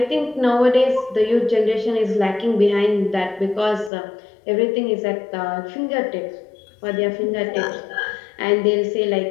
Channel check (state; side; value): drops out; right; at 3.9 s